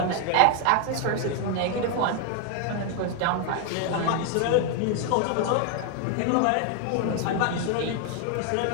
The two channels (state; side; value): different; both; correlation 0.00